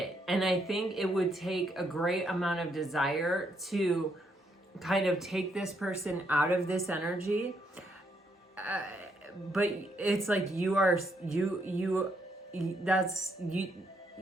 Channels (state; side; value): normal; both; correlation 0.75